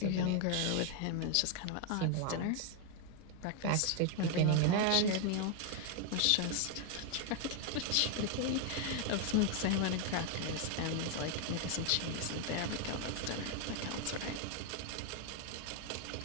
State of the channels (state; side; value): different; both; correlation 0.01